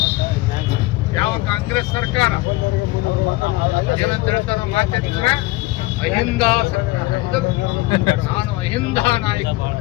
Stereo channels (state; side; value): quieter; right; 19.8 dB